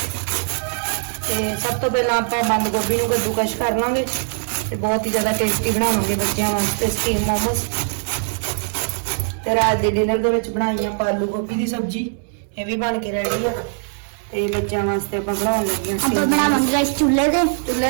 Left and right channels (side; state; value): left; silent; digital silence